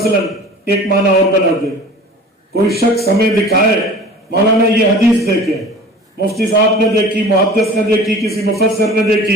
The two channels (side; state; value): both; normal; correlation 0.42